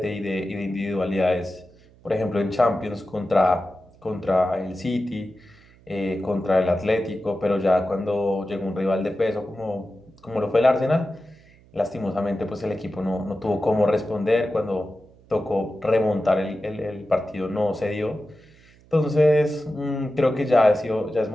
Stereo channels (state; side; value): noise; right; hum, 27 dB below the sound